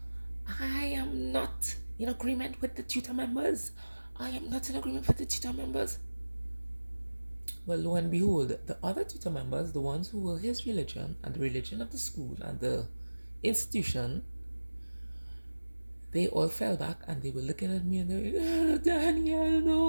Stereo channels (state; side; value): inverted; both; correlation -1.00